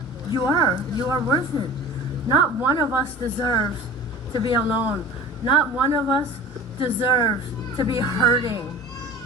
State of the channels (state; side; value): normal; both; correlation 0.39